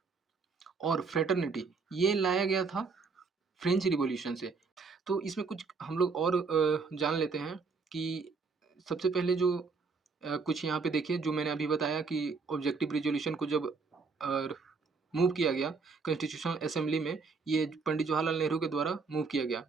और फ्रेटर्निटी, ये लाया गया था फ्रेंच रिवॉल्यूशन से। तो इसमें कुछ हम लोग और जान लेते हैं कि सबसे पहले जो कुछ यहाँ पे देखिए, जो मैंने अभी बताया कि ऑब्जेक्टिव रिज़ॉल्यूशन को जब अ, मूव किया गया कॉन्स्टिट्यूशनल असेंबली में, ये पंडित जवाहरलाल नेहरू के द्वारा मूव किया गया,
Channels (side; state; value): left; quieter; 4.7 dB